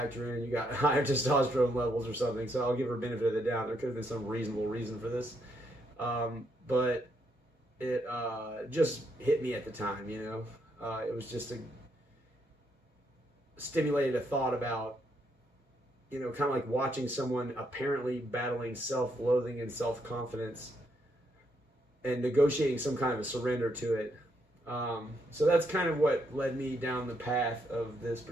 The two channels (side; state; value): both; normal; correlation 0.76